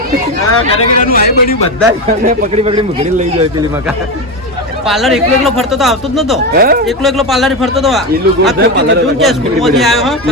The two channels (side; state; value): both; normal; correlation 0.15